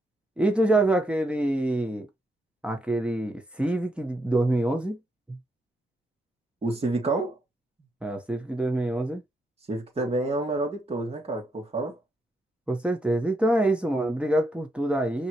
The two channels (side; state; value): both; normal; correlation 0.79